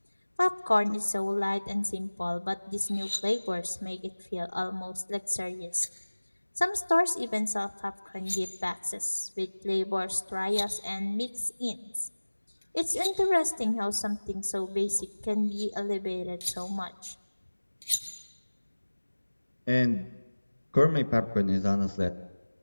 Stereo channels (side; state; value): both; inverted; correlation -1.00